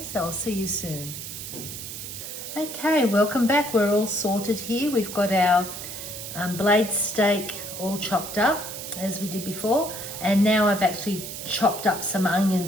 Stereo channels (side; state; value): right; noise; hiss, 9 dB below the sound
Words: so I'll see you soon. Okay, welcome back. We're all sorted here. We've got our blade steak all chopped up as we did before, and now I've actually chopped up some